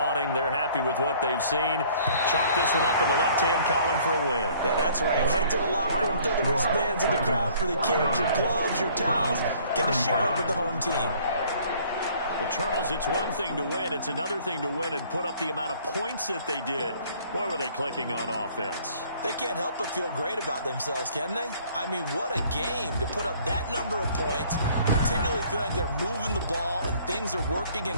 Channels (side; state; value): both; inverted; correlation -0.57